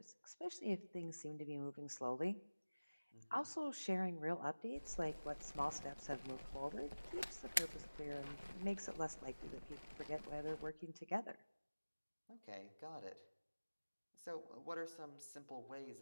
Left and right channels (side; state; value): both; inverted; correlation -1.00